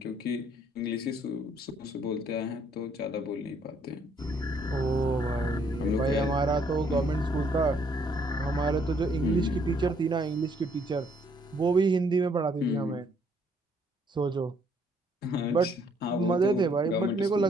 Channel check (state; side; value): normal; both; correlation 0.67